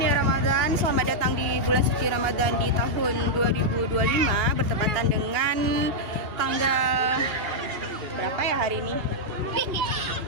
Ramadan, selamat datang di bulan suci Ramadan di tahun 2025, bertepatan dengan tanggal berapa ya hari ini?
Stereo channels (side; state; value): left; late; 2.8 ms